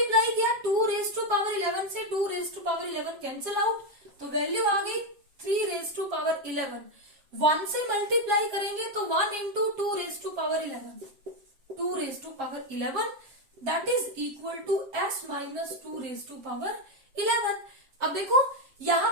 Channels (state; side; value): late; left; 7.3 ms